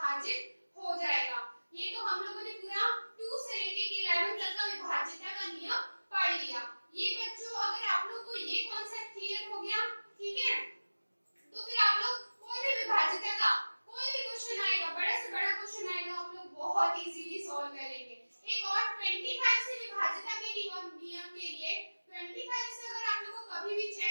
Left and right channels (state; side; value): inverted; both; correlation -1.00